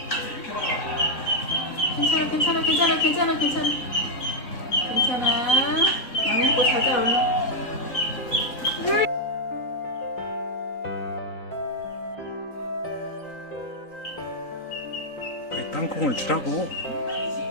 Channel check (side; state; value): right; late; 3.9 ms